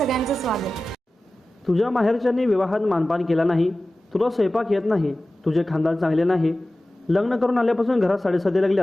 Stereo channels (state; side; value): normal; both; correlation 0.96